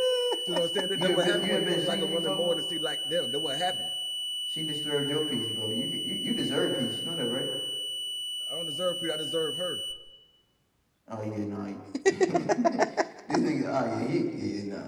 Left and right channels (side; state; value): both; identical; correlation 1.00